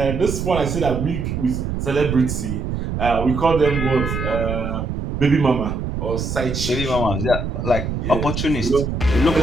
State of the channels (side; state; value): right; noise; rumble, 3 dB below the sound